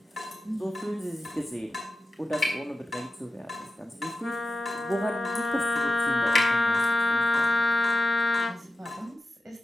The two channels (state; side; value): normal; both; correlation 0.91